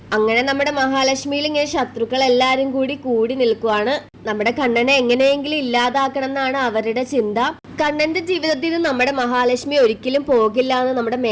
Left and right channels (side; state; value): both; identical; correlation 1.00